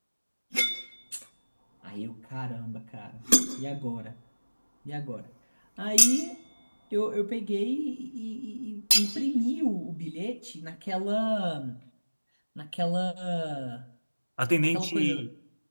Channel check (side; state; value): both; inverted; correlation -1.00